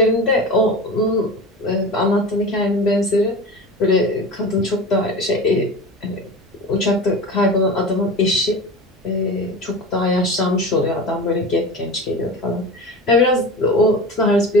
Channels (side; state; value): both; normal; correlation 0.31